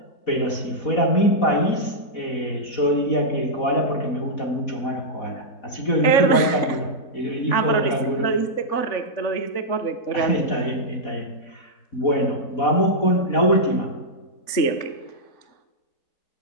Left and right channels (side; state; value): right; late; 3.5 ms